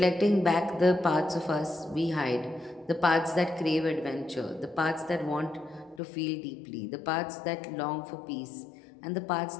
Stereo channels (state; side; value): drops out; right; at 6.0 s